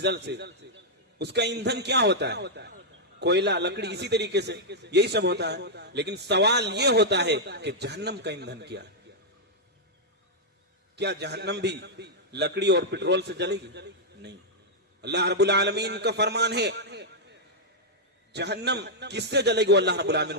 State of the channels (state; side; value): normal; both; correlation -0.06